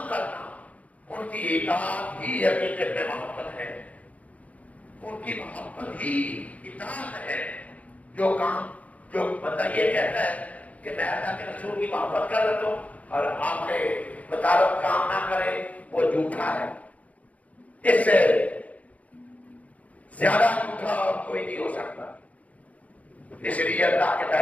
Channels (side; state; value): right; late; 0.069 ms